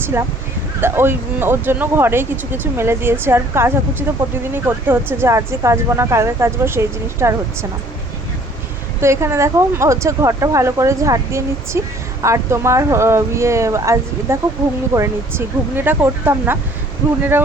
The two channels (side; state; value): both; normal; correlation 0.56